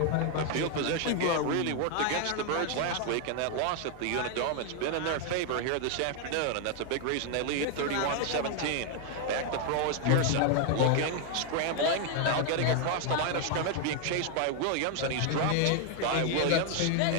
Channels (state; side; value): different; both; correlation 0.01